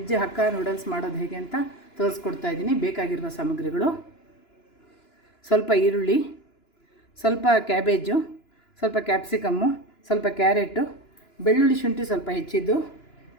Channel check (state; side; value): late; right; 2.9 ms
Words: ಹಕ್ಕ ನೂಡಲ್ಸ್ ಮಾಡೋದು ಹೇಗೆ ಅಂತ ತೋರಿಸ್ಕೊಡ್ತಾ ಇದ್ದೀನಿ. ಬೇಕಾಗಿರುವ ಸಾಮಗ್ರಿಗಳು: ಸ್ವಲ್ಪ ಈರುಳ್ಳಿ, ಸ್ವಲ್ಪ ಕ್ಯಾಬೇಜು, ಸ್ವಲ್ಪ ಕ್ಯಾಪ್ಸಿಕಮ್ಮು, ಸ್ವಲ್ಪ ಕ್ಯಾರೆಟು, ಬೆಳ್ಳುಳ್ಳಿ ಶುಂಠಿ ಸ್ವಲ್ಪ ಹೆಚ್ಚಿದ್ದು,